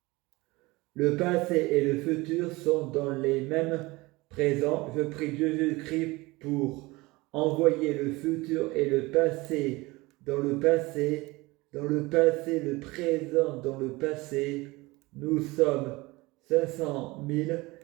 le passé et le futur sont dans les mêmes présents. Je prie Jésus-Christ pour envoyer le futur et le passé dans le passé, le présent dans le passé. Nous sommes 500 000,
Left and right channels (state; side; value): quieter; left; 22.2 dB